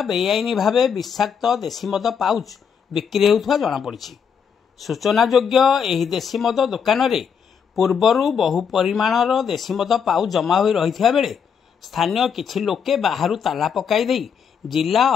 बेआईनी भावे विषाक्त देशी मद पाउच बिक्री हेउथबा जणा पड़िछि। सूचना योग्य एही देशी मद दुकान रे पूर्वरू बहु परिमाणर देशी मद पाउच जमा होई रहिथिया बेले स्थानीय किछि लोके बाहरु ताला पकाई देई जिला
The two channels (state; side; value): quieter; right; 7.0 dB